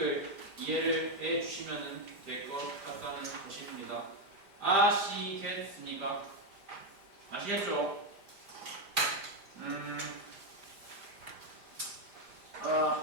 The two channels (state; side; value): late; left; 5.0 ms